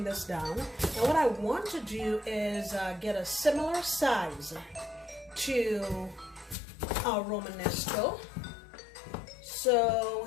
this down. And what I want to do is get a similar size to our Romanesco.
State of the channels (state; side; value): drops out; right; at 6.6 s